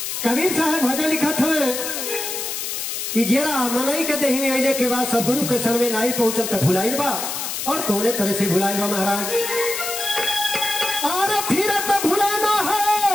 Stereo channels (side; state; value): left; noise; hiss, 4 dB below the sound